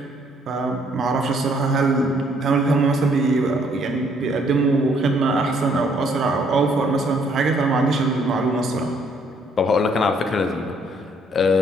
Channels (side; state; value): both; normal; correlation 0.66